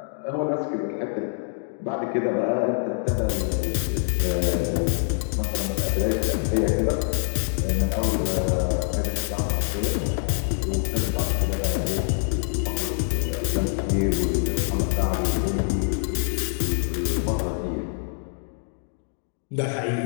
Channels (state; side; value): silent; right; digital silence